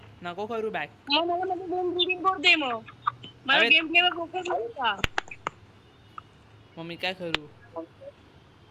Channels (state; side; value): identical; both; correlation 1.00